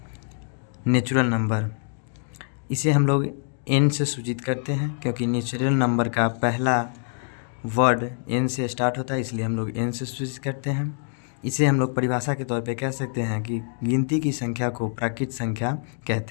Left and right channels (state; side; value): silent; right; digital silence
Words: नेचुरल नंबर। इसे हम लोग n से सूचित करते हैं, क्योंकि नेचुरल नंबर का पहला वर्ड n से स्टार्ट होता है, इसलिए हम लोग n से सूचित करते हैं। इसे हम लोग परिभाषा के तौर पे कह सकते हैं कि गिनती की संख्या को प्राकृत संख्या